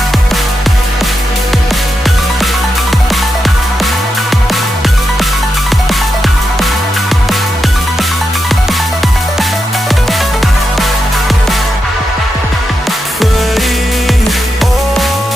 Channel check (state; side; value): normal; both; correlation 0.86